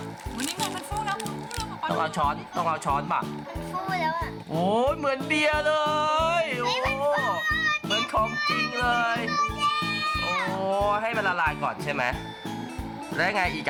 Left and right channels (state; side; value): identical; both; correlation 1.00